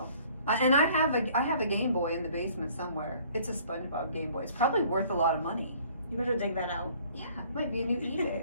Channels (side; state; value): both; inverted; correlation -0.56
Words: And I have a Game Boy in the basement somewhere. It's a SpongeBob Game Boy. It's probably worth a lot of money. You better dig that out. Yeah, it might be a new